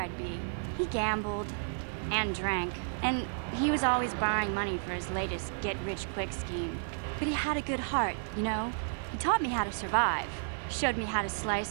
be. He gambled and drank, and he was always borrowing money for his latest get-rich-quick scheme. But he had a good heart, you know? He taught me how to survive, showed me how to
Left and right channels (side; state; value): left; silent; digital silence